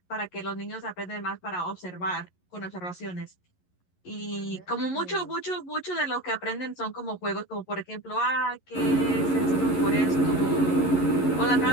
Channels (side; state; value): right; late; 11 ms